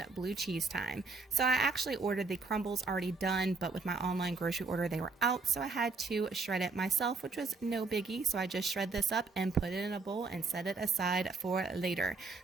blue cheese time. So I actually ordered the crumbles already done, but with my online grocery order, they were out. So I had to shred it myself, which was no biggie. So I just shred this up and put it in a bowl and set it aside for later.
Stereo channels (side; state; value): left; quieter; 4.0 dB